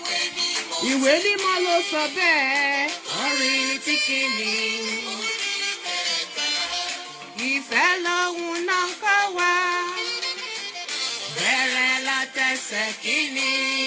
Ìwé mímọ́ ló sọ bẹ́ẹ̀. Orin tí kìíní. Ìfẹ́ lòun náà kọ́ wa. Bẹ̀rẹ̀ látẹsẹ̀ kìíní.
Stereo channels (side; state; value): both; identical; correlation 1.00